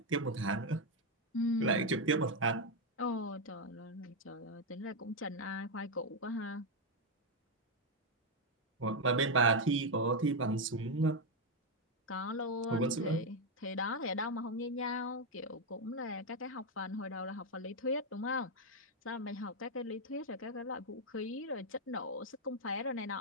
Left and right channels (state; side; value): normal; both; correlation 0.03